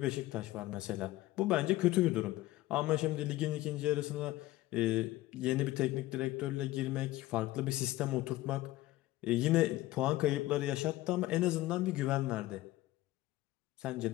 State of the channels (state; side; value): quieter; right; 17.1 dB